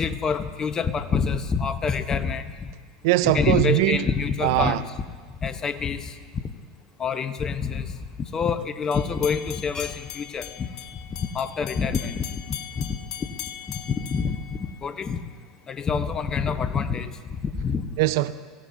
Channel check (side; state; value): both; normal; correlation 0.39